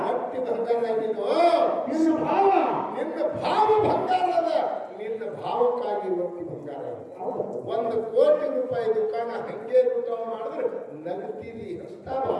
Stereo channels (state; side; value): identical; both; correlation 1.00